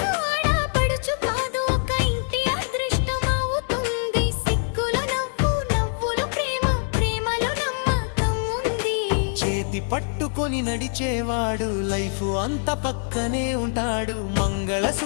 ఆడపడుచు కాదు, ఒక ఇంటి అదృష్టం అవుతుంది. సిగ్గులో నవ్వు, నవ్వులో ప్రేమ, ప్రేమలో నమ్మకం ఉంది. చేతి పట్టుకొని నడిచేవాడు లైఫ్ అంత పక్కనే ఉంటాడు.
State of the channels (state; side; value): silent; right; digital silence